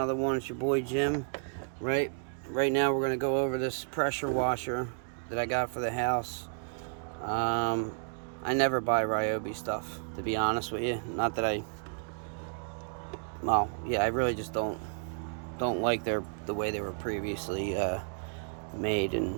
one. It's your boy Jim. Right now we're gonna go over this pressure washer that I got for the house. I never buy ryobi stuff, to be honest with you. Not that I really just don't like the way they were previously made,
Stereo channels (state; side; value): silent; left; digital silence